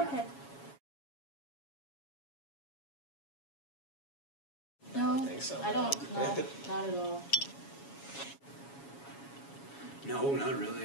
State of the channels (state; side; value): late; right; 7.2 ms